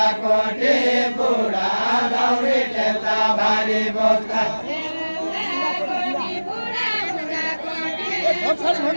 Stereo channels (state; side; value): inverted; both; correlation -1.00